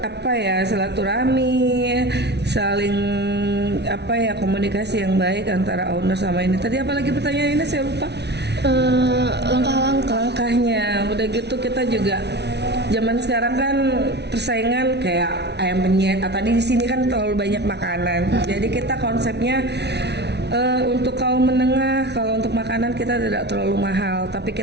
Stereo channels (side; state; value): left; late; 0.50 ms